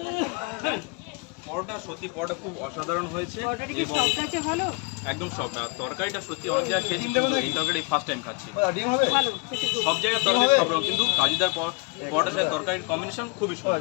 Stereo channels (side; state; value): right; quieter; 29.7 dB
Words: পরোটা সত্যি পরোটা খুব অসাধারণ হয়েছে এবং ভালো একদম সফট। আর তরকারিটা সত্যি অনেক জায়গায় খেয়েছি, এই তরকারি ফার্স্ট টাইম খাচ্ছি। ডিম হবে? সব জায়গায় তরকারি সব রকম, কিন্তু কাজুদার পরোটার সাথে তরকারির কম্বিনেশন খুবই সুন্দর,